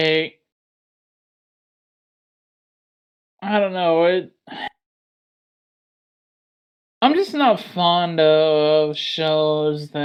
I don't know. I'm just not fond of shows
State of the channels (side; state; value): both; identical; correlation 1.00